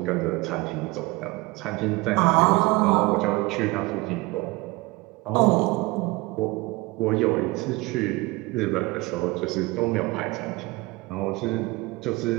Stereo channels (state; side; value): quieter; left; 22.4 dB